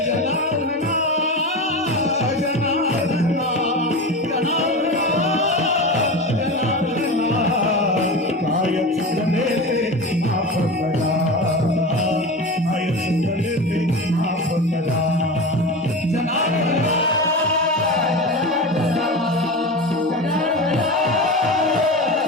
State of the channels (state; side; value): normal; both; correlation 0.26